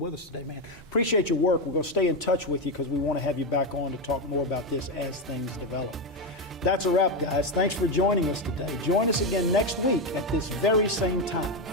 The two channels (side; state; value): both; normal; correlation 0.09